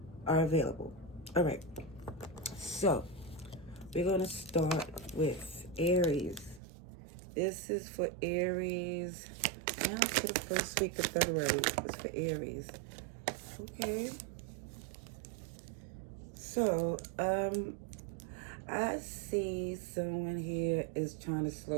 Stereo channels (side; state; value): left; drops out; at 6.6 s